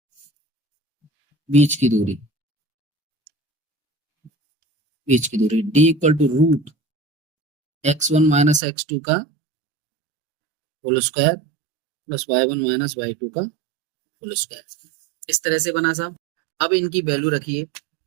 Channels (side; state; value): left; drops out; at 8.6 s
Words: बीच की दूरी D equal to root x1 minus x2 का whole square plus y1 minus y2 का होल स्क्वायर, इस तरह से बना साहब। अब इनकी वैल्यू रखिए,